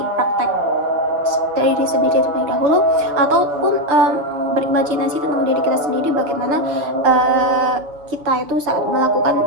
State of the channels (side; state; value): left; late; 6.3 ms